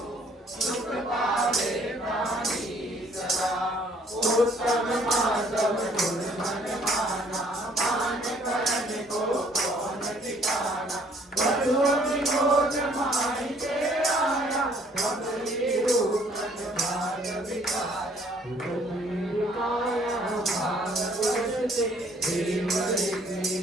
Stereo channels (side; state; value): both; normal; correlation 0.61